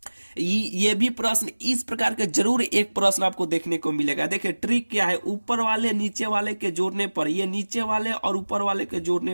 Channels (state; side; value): inverted; both; correlation -1.00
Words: ये भी प्रश्न इस प्रकार के जरूर एक प्रश्न आपको देखने को मिलेगा। देखिए ट्रिक क्या है, ऊपर वाले नीचे वाले के जोड़ने पर, ये नीचे वाले और ऊपर वाले के